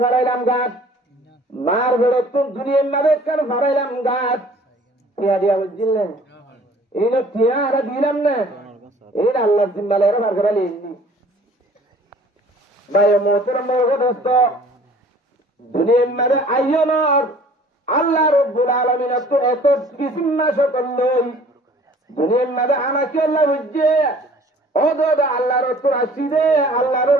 ভরাইলাম গাত মার হুডতুন দুনিয়ার মারে একখান ভরাইলাম গাত টিয়া দিয়া বুঝলে এই না টিয়া আর দিলাম না এই আল্লাহ জিম্মালে এর ভার করালি ভাই মোহতরম দোস্ত দুনিয়ার মারে আইয়নর আল্লাহ রব্বুল আলামিন এত কিসিম্মা সকল লই দুনিয়ার মাঝে আনাকে আল্লাহ বুঝছে ও দাদা আল্লাহ রসুল আসিদে আল্লাহ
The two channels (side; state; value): both; normal; correlation 0.52